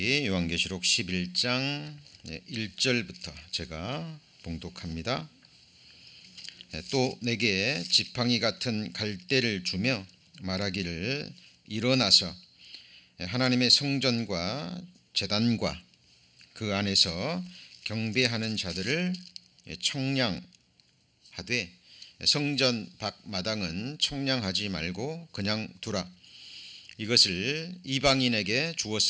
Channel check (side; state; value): both; identical; correlation 1.00